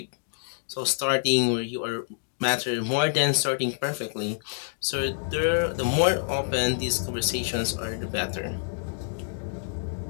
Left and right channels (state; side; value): silent; right; digital silence